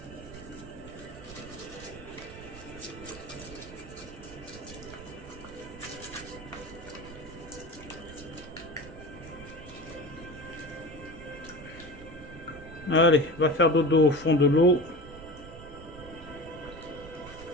Allez, va faire dodo au fond de l'eau.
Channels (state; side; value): noise; right; rumble, 15 dB below the sound